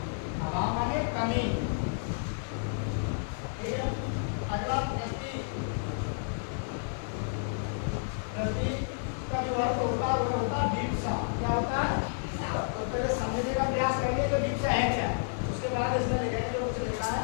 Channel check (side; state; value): right; silent; 57 dB below the other